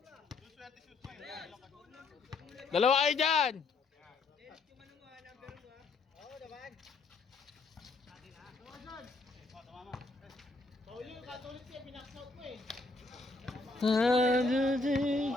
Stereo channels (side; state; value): right; quieter; 3.6 dB